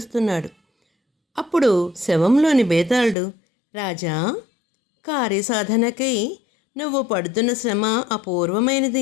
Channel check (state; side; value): drops out; right; at 3.2 s